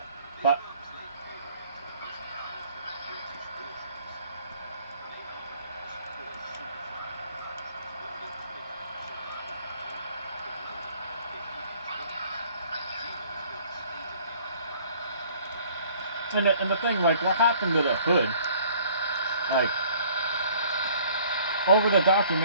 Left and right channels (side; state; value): both; inverted; correlation -0.57